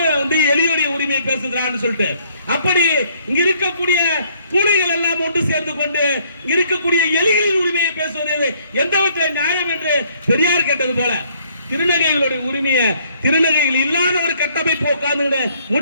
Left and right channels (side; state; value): both; inverted; correlation -0.65